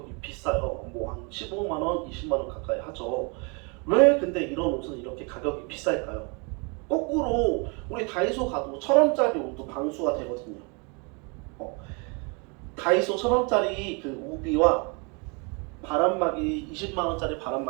비싸요. 뭐 한 15만원, 20만원 가까이 하죠. 왜 근데 이런 옷은 이렇게 가격이 비쌀까요? 거꾸로 우리 다이소 가도 1,000원짜리 옷도 방수가 되거든요. 다이소 1,000원짜리 그 우비와 바람막이 20만원짜리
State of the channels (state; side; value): quieter; left; 32.8 dB